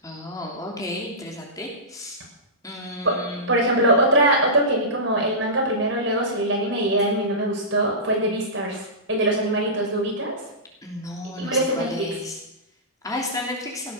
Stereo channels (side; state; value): both; normal; correlation -0.19